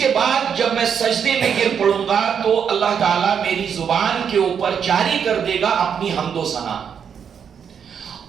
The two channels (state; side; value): quieter; left; 7.5 dB